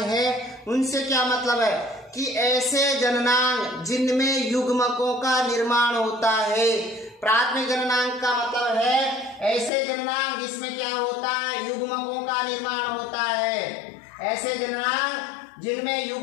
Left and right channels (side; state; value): right; drops out; at 9.7 s